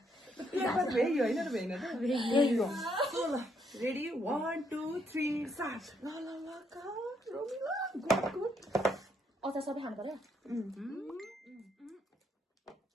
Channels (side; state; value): both; normal; correlation 0.73